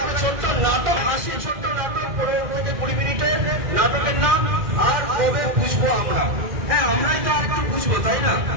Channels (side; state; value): left; late; 2.4 ms